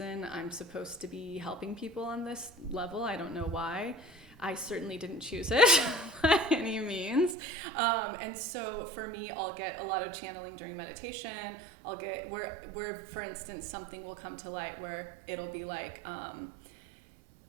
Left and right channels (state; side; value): drops out; left; at 7.4 s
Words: I'm supposed to be helping people on this level. I don't know why. I certainly didn't choose it by any means. And so for me, I'll get a lot of channeling during meditation. I'll get where, for instance, something will come to light where it'll be like,